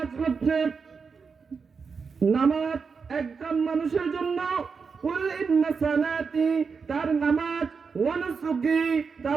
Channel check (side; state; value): left; quieter; 5.4 dB